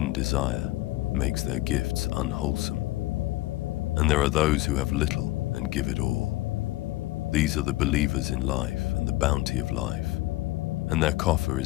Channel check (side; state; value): right; quieter; 18.3 dB